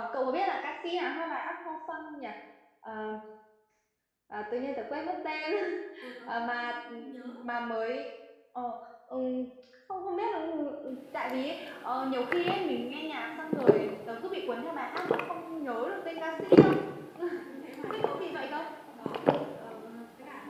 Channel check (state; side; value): identical; both; correlation 1.00